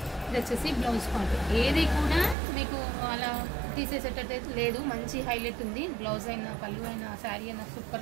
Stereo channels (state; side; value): drops out; left; at 2.4 s